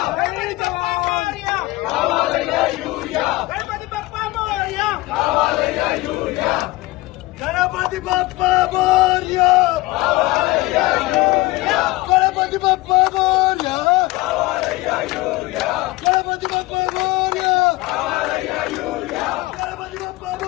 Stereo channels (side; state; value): right; quieter; 19.9 dB